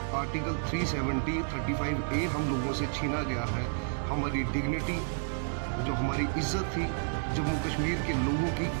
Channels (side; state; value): left; silent; digital silence